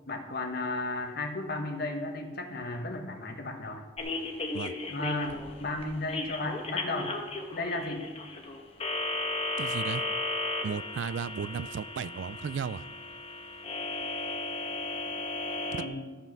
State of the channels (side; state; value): both; normal; correlation 0.21